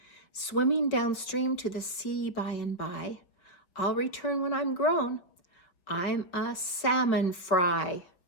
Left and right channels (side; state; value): right; late; 5.4 ms